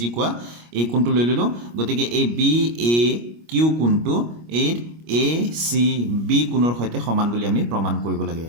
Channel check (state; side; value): late; left; 25 ms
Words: কোৱা এই কোণটো লৈ ল'লোঁ গতিকে এই BAQ কোণটো এই ACB কোণৰ সৈতে সমান বুলি আমি প্ৰমাণ কৰিব লাগে